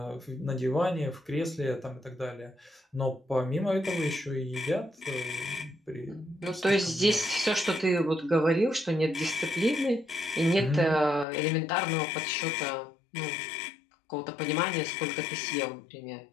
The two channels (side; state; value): right; drops out; at 11.2 s